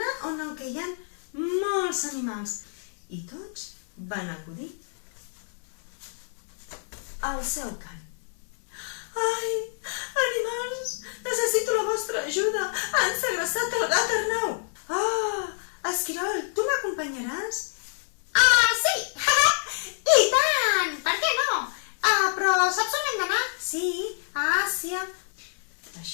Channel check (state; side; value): silent; right; 60 dB below the other